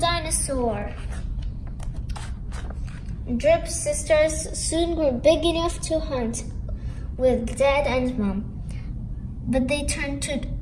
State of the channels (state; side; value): identical; both; correlation 1.00